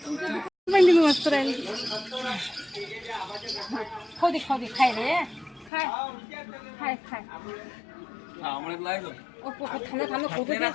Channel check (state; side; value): drops out; right; at 5.7 s